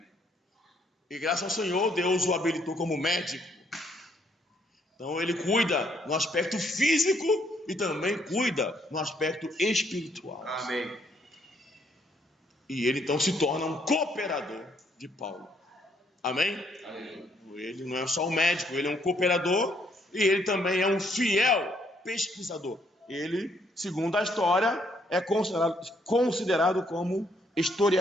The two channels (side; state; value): both; normal; correlation 0.69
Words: E graças ao Senhor, Deus o habilitou como médico. Então ele cuida no aspecto físico e também cuida no aspecto espiritual. Amém. E ele então se torna um cooperador de Paulo. Amém? Amém. Ele não é só um médico, ele é um cooperador e ele também é um fiel pesquisador. Ele, segundo a história, é considerado como